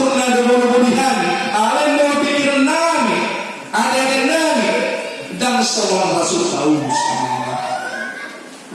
dengan berhani. Allah mau pikiran nami, ada nami, dan seorang Rasul Paulus,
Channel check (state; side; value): identical; both; correlation 1.00